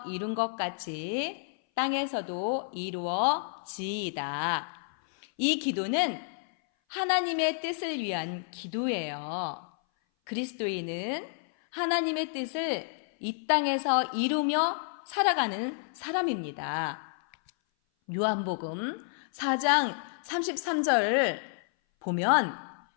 이룬 것 같이 땅에서도 이루어지이다. 이 기도는 하나님의 뜻을 위한 기도예요. 그리스도인은 하나님의 뜻을 이 땅에서 이루며 살아가는 사람입니다. 요한복음 4장 33절을 보면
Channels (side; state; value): right; silent; 57 dB below the other